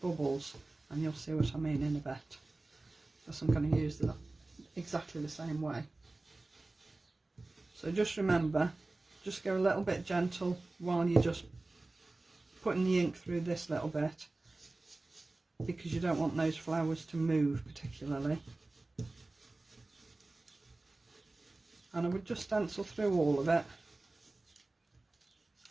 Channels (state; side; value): quieter; left; 3.1 dB